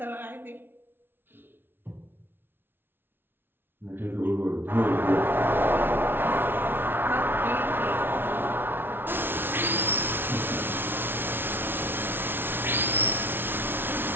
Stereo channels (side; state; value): left; late; 0.10 ms